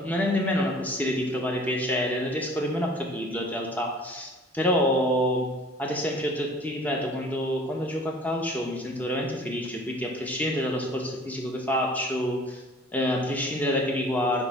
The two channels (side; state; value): both; normal; correlation 0.49